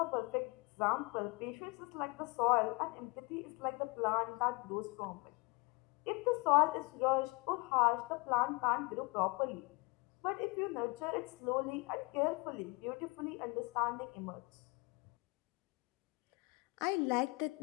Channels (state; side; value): quieter; right; 27.2 dB